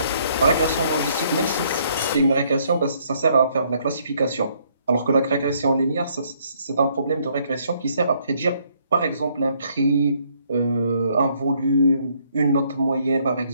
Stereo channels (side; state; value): both; inverted; correlation -0.67